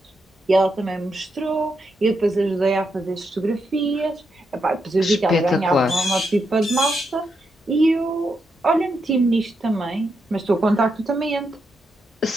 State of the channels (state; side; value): normal; both; correlation 0.83